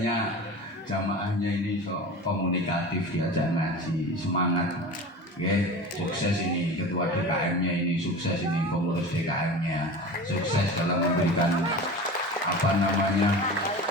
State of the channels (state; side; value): normal; both; correlation 0.33